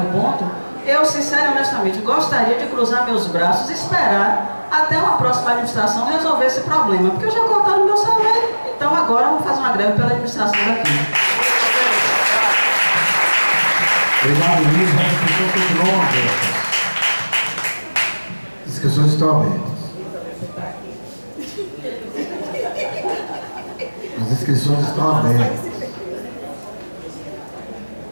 o ponto, eu, sinceramente e honestamente, gostaria de cruzar meus braços e esperar até uma próxima administração resolver esse problema, porque eu já cortaram meu salário, então agora vamos fazer uma greve pela administração daqui. Obrigado, Luiz. As inscrições continuam abertas. As inscrições estão abertas. As inscrições estão abertas.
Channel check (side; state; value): both; inverted; correlation -1.00